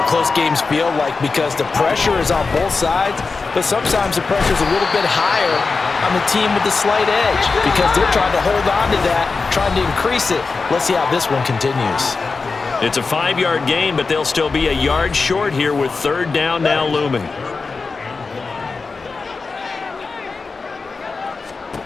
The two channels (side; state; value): right; quieter; 4.3 dB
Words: close games feel like because the pressure is on both sides, but sometimes the pressure is a little bit higher on the team with the slight edge because they're trying to hold on to that, trying to increase it. Let's see how this one continues. It's a 5-yard gain, but they'll still be a yard short here with third down now looming.